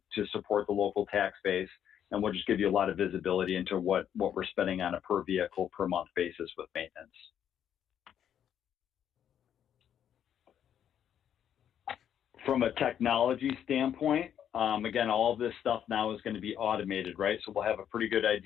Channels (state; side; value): quieter; right; 9.4 dB